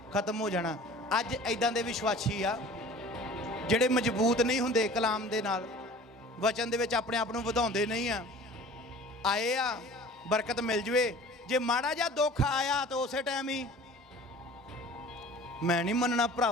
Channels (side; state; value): both; normal; correlation 0.44